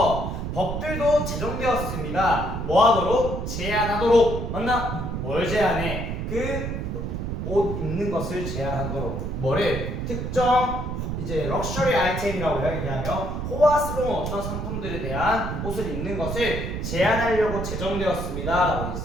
법들도 제정되었습니다. 뭐 하도록? 제한하도록. 맞나? 뭘 제한해? 그 옷 입는 것을 제한하도록. 뭐를? 특정 이제 럭셔리 아이템이라고 얘기하며 호화스러운 어떤 상품들에 대한 옷을 입는 것을 제한하려고 제정되었습니다. 라고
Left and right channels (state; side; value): noise; right; rumble, 4 dB below the sound